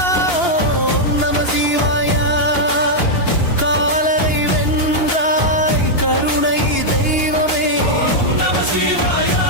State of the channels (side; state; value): right; late; 2.8 ms